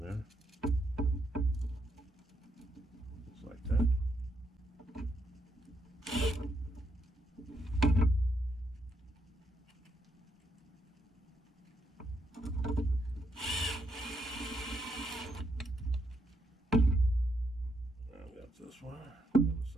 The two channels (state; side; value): normal; both; correlation 0.77